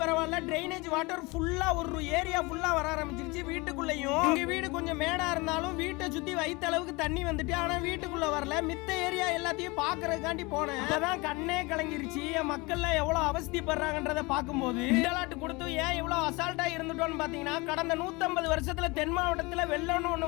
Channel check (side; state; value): right; quieter; 25.1 dB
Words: பரவாயில்ல, டிரைனேஜ் வாட்டர் ஃபுல்லா ஒரு ஏரியா ஃபுல்லா வர ஆரம்பிச்சிருச்சு. வீட்டுக்குள்ளயும் எங்க வீடு கொஞ்சம் மேடா இருந்தாலும் வீட்டை சுத்தி வைத்த அளவுக்கு தண்ணி வந்துட்டு, ஆனா வீட்டுக்குள்ள வரல. மித்த ஏரியா எல்லாத்தையும் பாக்குறதுக்காண்டி போனேன். அதான் கண்ணே கலங்கிருச்சு. மக்கள்ல எவ்வளவு அவஸ்திப்படுறாங்கன்றத பார்க்கும்போது கொடுத்து ஏன் இவ்வளவு அசால்ட்டா இருந்துட்டோம்னு பாத்தீங்கன்னா, கடந்த 150 வருஷத்துல தென் மாவட்டத்துல வெள்ளம்னு ஒண்ணு